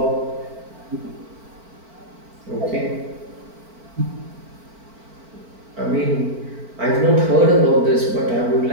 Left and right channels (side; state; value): left; late; 4.5 ms